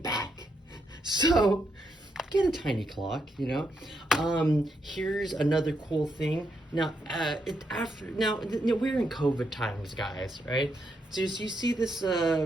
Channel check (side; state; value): both; normal; correlation 0.79